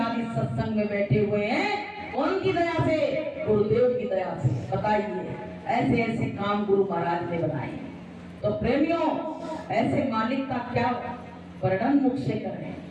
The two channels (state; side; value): identical; both; correlation 1.00